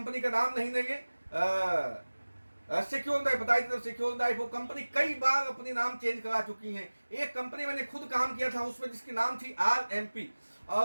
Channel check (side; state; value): both; inverted; correlation -1.00